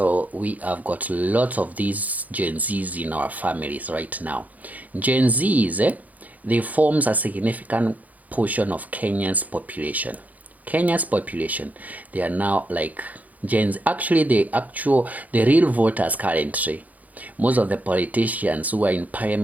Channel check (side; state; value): left; late; 0.078 ms